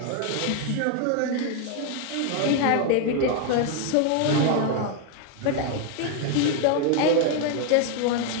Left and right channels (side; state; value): both; different; correlation 0.01